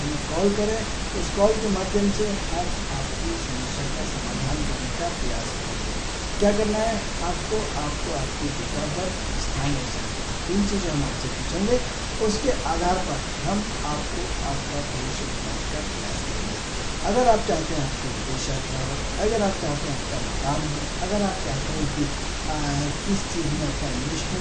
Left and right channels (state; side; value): identical; both; correlation 1.00